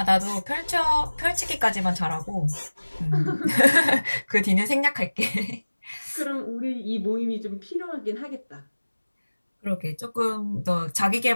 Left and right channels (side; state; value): both; inverted; correlation -1.00